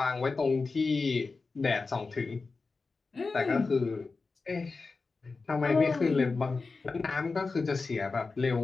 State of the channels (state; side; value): quieter; right; 4.1 dB